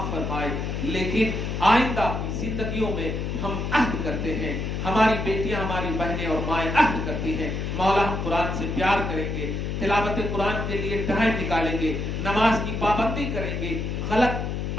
फरमाए। लेकिन आइंदा की जिंदगियों में हम अहद करते हैं, हमारी बेटियां, हमारी बहनें और माएँ अहद करती हैं, मौला हम कुरान से प्यार करेंगे, तिलावत कुरान के लिए टाइम निकालेंगे, नमाज की पाबंदी करेंगे, गलत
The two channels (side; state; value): left; noise; hum, 3 dB below the sound